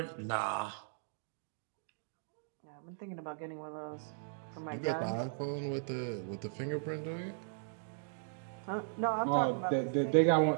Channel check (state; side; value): silent; left; digital silence